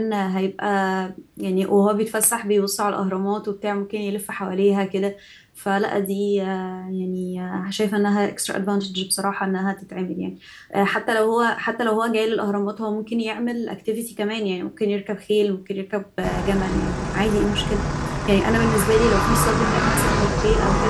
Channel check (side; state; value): both; identical; correlation 1.00